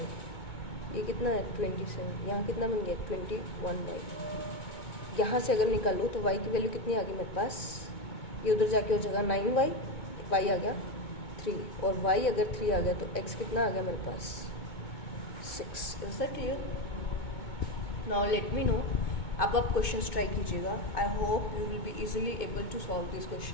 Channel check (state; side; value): late; right; 2.2 ms